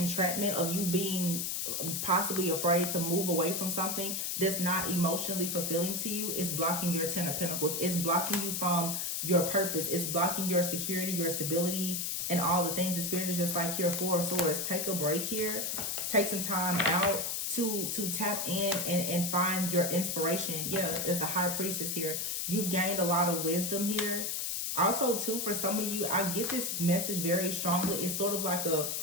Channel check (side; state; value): left; noise; hiss, 1 dB below the sound